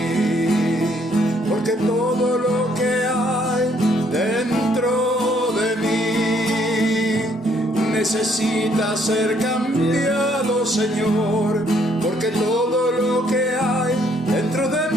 porque todo lo que hay dentro de mí necesita ser cambiado, Señor, porque todo lo que hay dentro de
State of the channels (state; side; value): normal; both; correlation 0.67